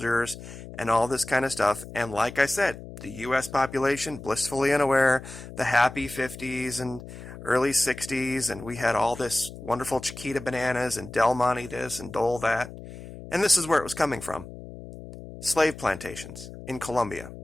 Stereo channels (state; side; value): noise; left; hum, 14 dB below the sound